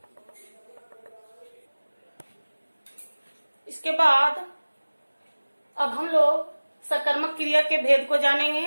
इसके बाद अब हम लोग सकर्मक क्रिया के भेद को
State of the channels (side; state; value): both; inverted; correlation -1.00